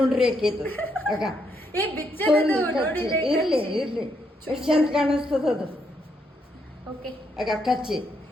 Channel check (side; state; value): both; normal; correlation 0.76